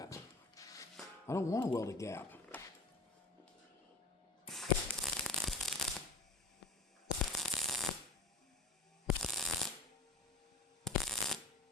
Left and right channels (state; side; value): quieter; right; 3.3 dB